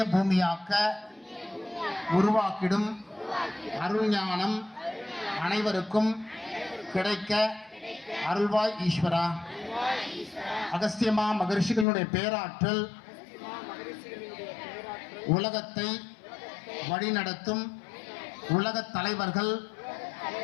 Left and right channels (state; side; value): drops out; right; at 11.9 s